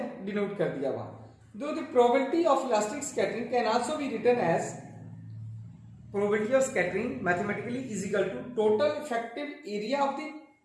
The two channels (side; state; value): both; identical; correlation 1.00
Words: डिनोट कर दिया वहां। Though the probability of elastic scattering can also be written as probability of scattering mathematically is equal to total effective area of the